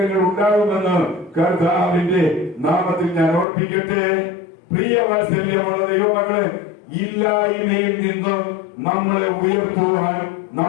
ഉണ്ടാകുമെന്ന് കർത്താവിന്റെ നാമത്തിൽ ഞാൻ ഓർപ്പിക്കട്ടെ. പ്രിയ വാത്സല്യമുള്ള ദൈവമക്കളെ, ഇല്ലായ്മയിൽ നിന്ന് നമ്മളെ ഉയർത്തുവാൻ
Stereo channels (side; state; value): right; drops out; at 3.5 s